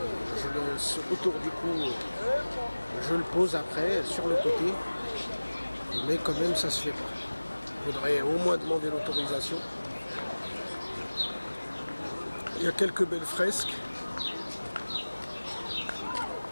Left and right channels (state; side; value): inverted; both; correlation -1.00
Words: je le autour du cou, je le pose après, sur le côté. Mais quand même, ça se fait pas. Il faudrait au moins demander l'autorisation. Il y a quelques belles fresques.